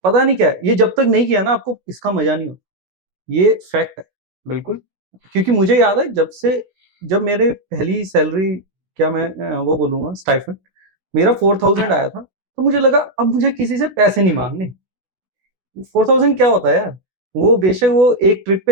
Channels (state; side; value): late; left; 16 ms